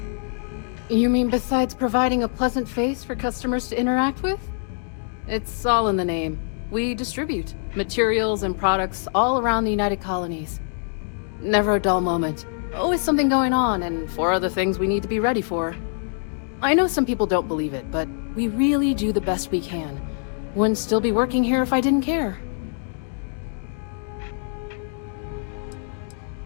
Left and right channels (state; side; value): silent; right; digital silence